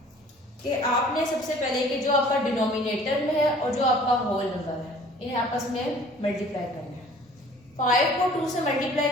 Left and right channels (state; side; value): normal; both; correlation 0.51